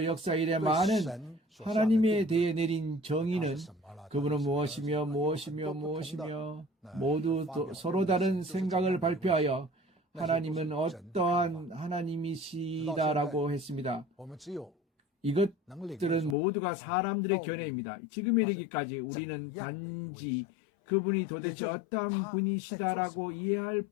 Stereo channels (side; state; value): right; drops out; at 16.4 s